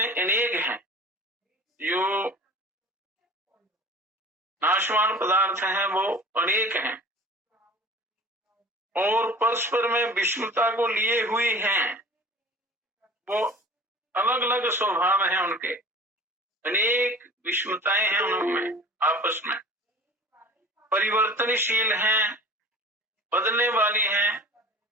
अनेक हैं, जो नाशवान पदार्थ हैं वो अनेक हैं और परस्पर में विषमता को लिए हुई हैं। वो अलग अलग स्वभाव हैं उनके, अनेक विषमताएं हैं उनमें, आपस में परिवर्तनशील हैं, बदलने वाली हैं,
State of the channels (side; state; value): both; normal; correlation 0.42